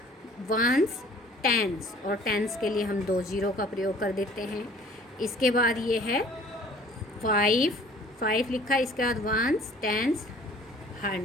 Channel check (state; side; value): normal; both; correlation 0.52